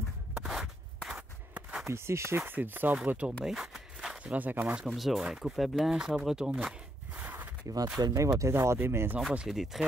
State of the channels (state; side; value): normal; both; correlation 0.77